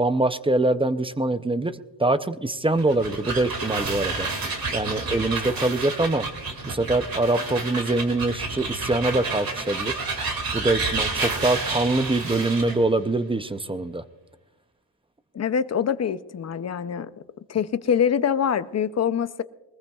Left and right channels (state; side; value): normal; both; correlation 0.46